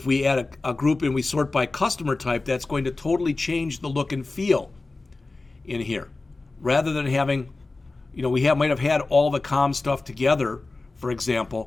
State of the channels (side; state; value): right; quieter; 3.4 dB